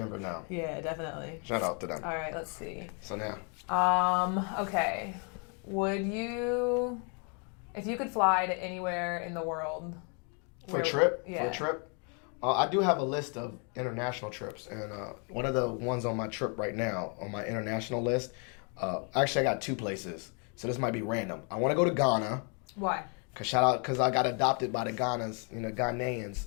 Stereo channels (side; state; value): right; quieter; 37.4 dB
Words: now. Yeah, definitely. Shout out to them. All right, let's see. So now. Okay. If you could fly to anywhere in the world. For a trip? Yeah. For a trip? I do have a list of international trips. And one of the ones on my trip right now, on my international list, actually I got two places. So this might be random. I want to go to Ghana. Why? Because I got adopted by the